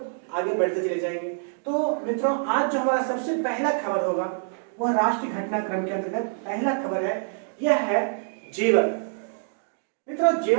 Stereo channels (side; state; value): left; silent; digital silence